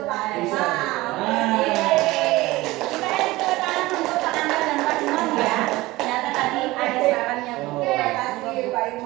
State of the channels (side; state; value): left; quieter; 19.4 dB